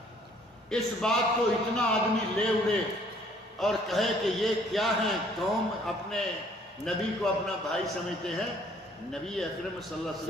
اس بات کو اتنا آدمی لے اڑے اور کہے کہ یہ کیا ہے، قوم اپنے نبی کو اپنا بھائی سمجھتے ہیں۔ نبی اکرم صلی اللہ علیہ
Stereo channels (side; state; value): both; normal; correlation 0.60